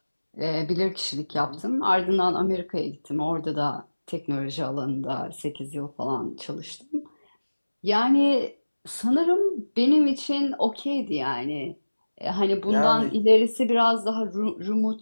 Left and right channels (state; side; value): inverted; both; correlation -1.00